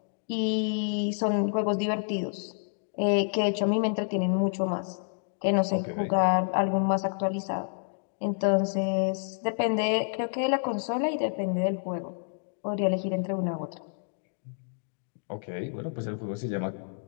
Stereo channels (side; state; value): right; silent; digital silence